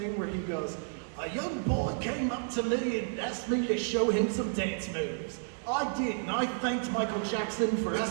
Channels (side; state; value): left; silent; 57 dB below the other